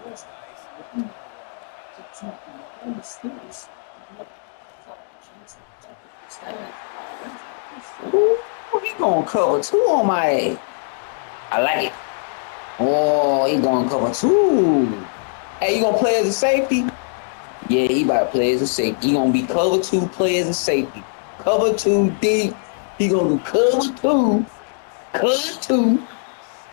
list. The Steelers. Ooh, he gonna cover 2 on my ass. I like it. Oh, he gonna cover 2. Hey, you gonna play as a safety? Yeah, he about to play as a safety. He gonna be cover 2, play as a safety. Cover 2 deep. He gonna do cover 2,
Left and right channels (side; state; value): right; silent; digital silence